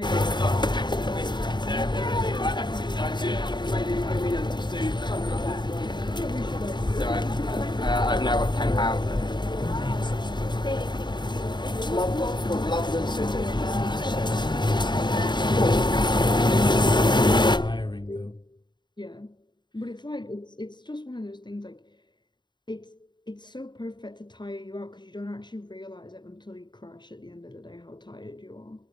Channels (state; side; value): late; right; 0.22 ms